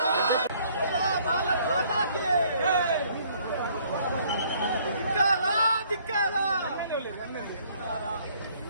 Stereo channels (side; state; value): both; inverted; correlation -0.62